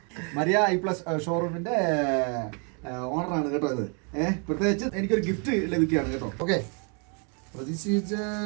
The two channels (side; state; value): left; quieter; 37.4 dB